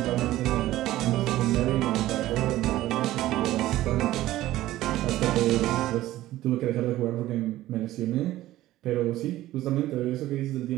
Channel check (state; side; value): quieter; left; 15.3 dB